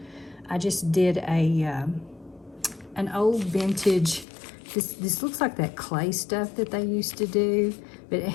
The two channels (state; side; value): drops out; right; at 4.2 s